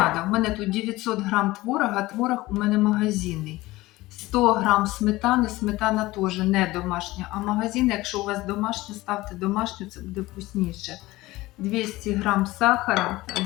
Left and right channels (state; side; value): quieter; right; 18.9 dB